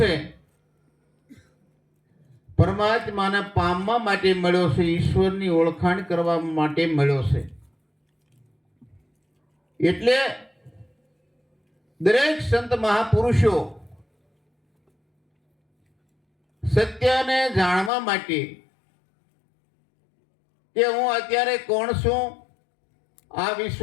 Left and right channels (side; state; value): right; drops out; at 17.9 s